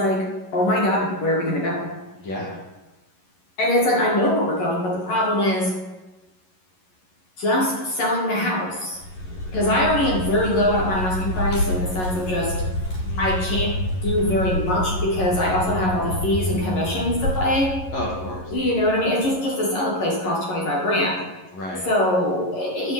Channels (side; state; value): right; late; 11 ms